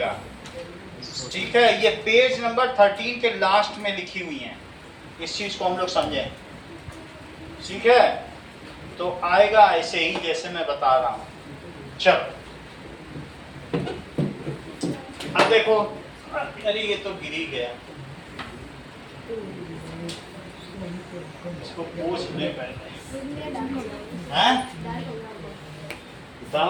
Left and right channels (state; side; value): identical; both; correlation 1.00